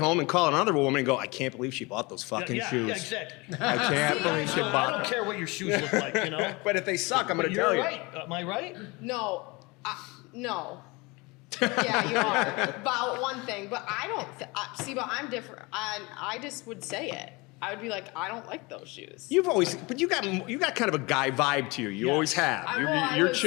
and call another woman and go, "I can't believe she bought those fucking shoes. Yeah, exactly. I can't believe she So I bought don't them." care what your shoes look like, you know. But if they suck, I'm going But to you're tell you. right. Am I right? No, no. Yeah, you are about one thing, but I don't see. But I'm different. I just would say it. I would be like, I don't like those shoes. You've always, but you got kind of a guy vibe to you. You Yes. always have. I You're was-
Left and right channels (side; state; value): right; quieter; 25.4 dB